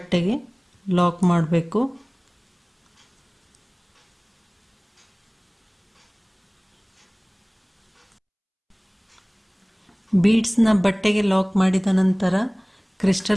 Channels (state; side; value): identical; both; correlation 1.00